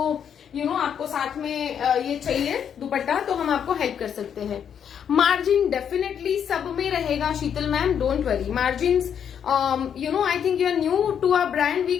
आपको साथ में ये चाहिए दुपट्टा तो हम आपको हेल्प कर सकते हैं। मार्जिन डेफिनेटली सब में रहेगा Sheetal ma'am, don't worry. Margin I think you are new to our brand, we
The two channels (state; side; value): quieter; right; 8.3 dB